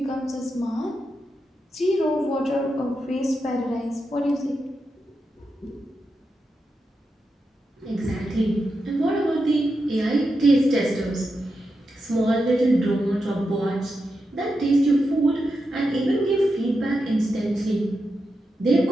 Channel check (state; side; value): normal; both; correlation 0.87